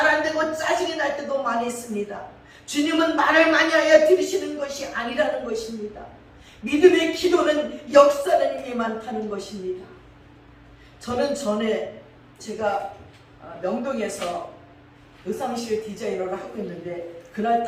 안 되고 짜증이 날 때도 많이 있습니다. 주님은 말을 많이 하여 들으시는 것이 아니라는 것입니다. 믿음의 기도는 역사하는 힘이 많다는 것입니다. 저는 전에 제가 명동에서 의상실 디자이너를 하고 있는데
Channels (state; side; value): identical; both; correlation 1.00